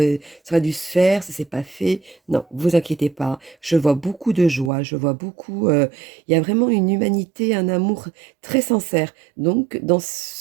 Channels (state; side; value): drops out; left; at 4.7 s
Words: ça aurait dû se faire, ça s'est pas fait. Non, vous inquiétez pas. Je vois beaucoup de joie, je vois beaucoup. Il y a vraiment une humanité, un amour très sincère. Donc dans